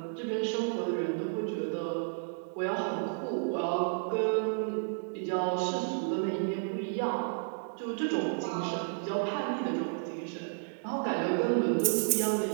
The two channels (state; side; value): silent; left; digital silence